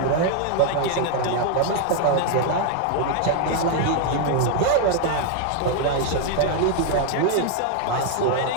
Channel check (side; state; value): both; different; correlation 0.00